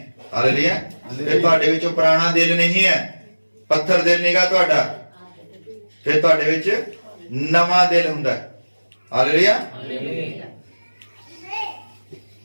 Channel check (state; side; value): inverted; both; correlation -1.00